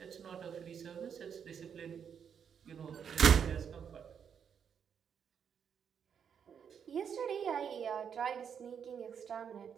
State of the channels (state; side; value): quieter; left; 7.6 dB